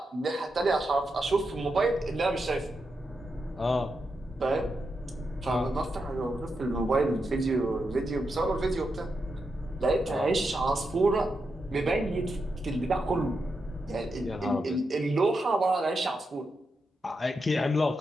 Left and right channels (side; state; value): both; normal; correlation 0.86